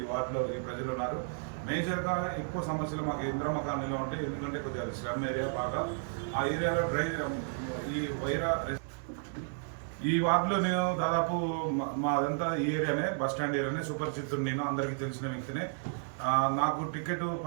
ఈ వార్డులో ఈ ప్రజలు ఉన్నారు. మేజర్గా ఎక్కువ సమస్యలు మాకు ఇంద్రమ్మ కాలనీలో ఉంటాయి. ఎందుకంటే కొద్దిగా స్లమ్ ఏరియా బాగా. ఆ ఏరియాలో ఈ వైరా ఈ వార్డులో నేను దాదాపు మాదంతా ఈ ఏరియానే, బస్ స్టాండ్ ఏరియానే, సుపరిచితుడు నేను, అందరికీ తెలిసిన వ్యక్తినే. నాకు టికెట్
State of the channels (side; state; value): left; silent; digital silence